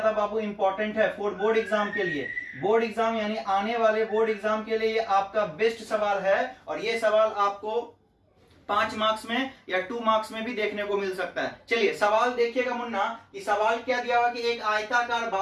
बाबू इंपॉर्टेंट है फॉर बोर्ड एग्जाम के लिए। बोर्ड एग्जाम यानी आने वाले बोर्ड एग्जाम के लिए ये आपका बेस्ट सवाल है और ये सवाल आपको 5 मार्क्स में या 2 मार्क्स में भी देखने को मिल सकता है। चलिए सवाल देखिएगा मुन्ना, कि सवाल क्या दिया हुआ कि एक आयताकार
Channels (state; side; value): identical; both; correlation 1.00